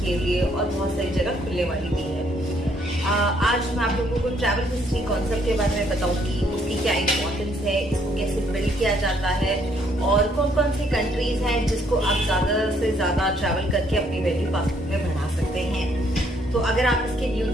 के लिए और बहुत सारी जगह खुलने वाली भी है। आज मैं आप लोगों को ट्रैवल हिस्ट्री कॉन्सेप्ट के बारे में बताऊंगी, उसकी क्या इंपॉर्टेंस है, इसको कैसे बिल्ड किया जाता है और कौन कौन सी कंट्रीज हैं जिसको आप ज़्यादा से ज़्यादा ट्रैवल करके अपनी वैल्यू पासपोर्ट में बढ़ा सकते हैं। तो अगर आप इसके न्यू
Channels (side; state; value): both; normal; correlation 0.68